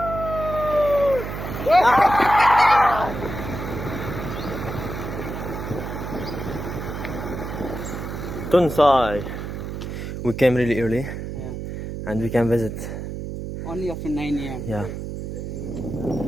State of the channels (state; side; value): noise; right; hum, 6 dB below the sound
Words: TONSAI. We came really early, Yeah. and we can visit. Only after 9 a.m. Yeah.